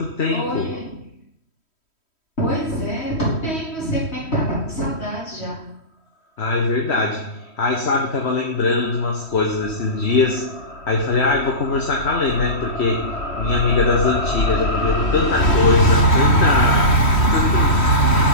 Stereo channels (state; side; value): late; right; 3.1 ms